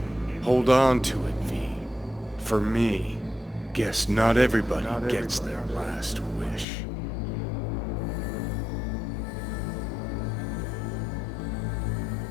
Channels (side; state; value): right; drops out; at 6.7 s